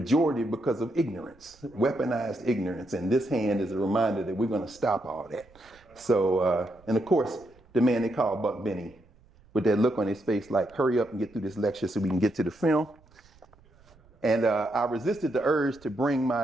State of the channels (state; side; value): noise; right; rumble, 28 dB below the sound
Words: because of ignorance, weaponized ignorance. And this hand is a reminder that we're going to stop all that. So, and of course, the man they call Buck Benny, with that look on his face like, hurry up and get through this lecture so we can get to the film. And I resisted the urge to bring